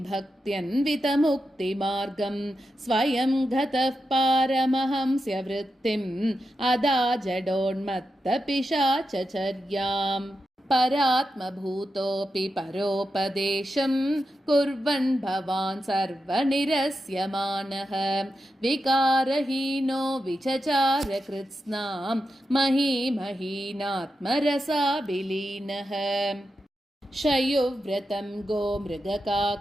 स्वयं गतः पारमहंस्य वृत्तिम् अदा जडोन्मत्तपिशाचचर्याम् परात्मभूतोऽपि परोपदेशं कुर्वन् भवान् सर्वनिरस्यमानः विकारहीनो विचचार कृत्स्नां महीमहीनात्मरसाभिलीनः शयुव्रतं गोमृगकाकचर्यां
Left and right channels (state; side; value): normal; both; correlation 0.88